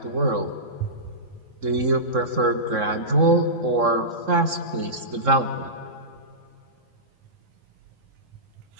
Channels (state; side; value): late; left; 3.7 ms